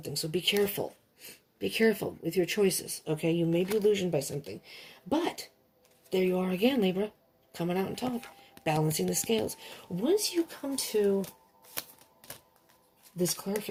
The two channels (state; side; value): identical; both; correlation 1.00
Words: so be careful. Be careful with your choices, okay? You may be illusioned by something. But there you are again, Libra, coming out on top, balancing the scales. Once you come to this